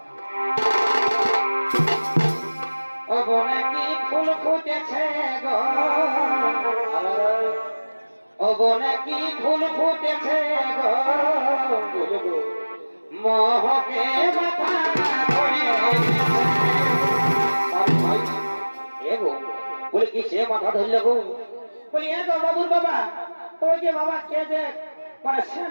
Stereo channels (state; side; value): inverted; both; correlation -1.00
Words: ও বনে কি ফুল ফুটেছে গো ও বনে কি ফুল ফুটেছে গো মোহকে মাথা ধরে এগো বলে কি সে মাথা ধরলে গো। বলি এগো বাবুর বাবা ওই যে বাবা কে যে মানে